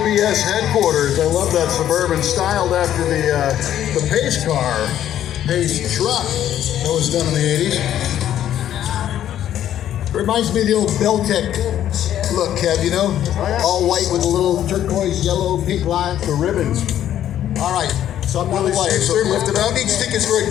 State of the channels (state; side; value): quieter; right; 11.2 dB